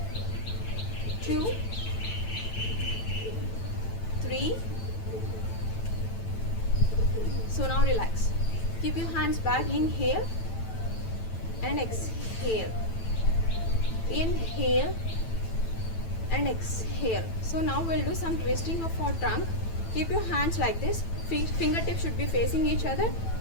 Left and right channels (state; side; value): late; right; 9.0 ms